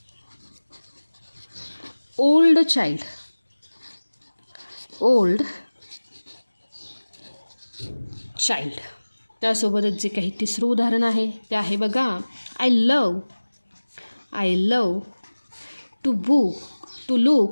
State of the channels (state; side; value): inverted; both; correlation -1.00